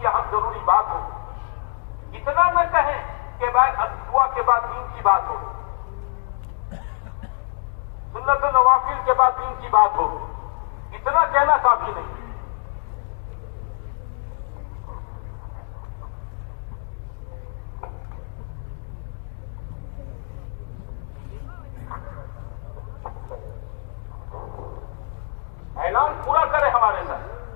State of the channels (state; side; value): silent; right; digital silence